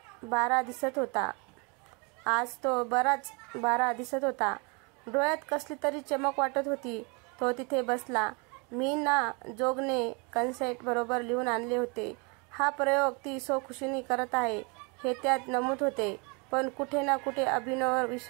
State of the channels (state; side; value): quieter; left; 31.5 dB